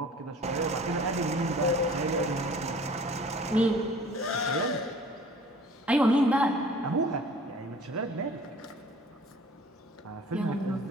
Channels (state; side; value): normal; both; correlation 0.49